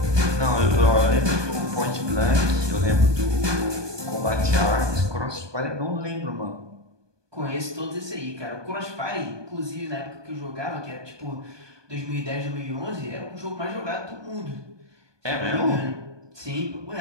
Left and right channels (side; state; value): left; late; 1.2 ms